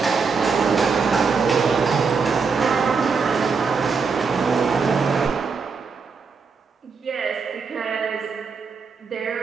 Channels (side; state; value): left; quieter; 5.2 dB